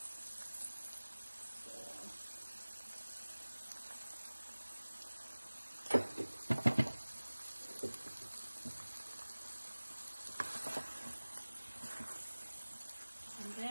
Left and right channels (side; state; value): both; inverted; correlation -1.00